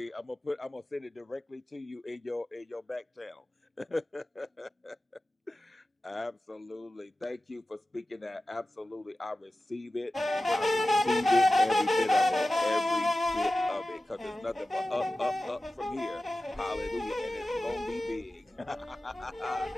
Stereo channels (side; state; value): both; normal; correlation 0.95